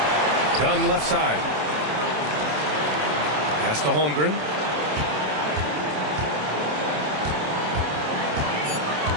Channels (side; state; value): left; late; 27 ms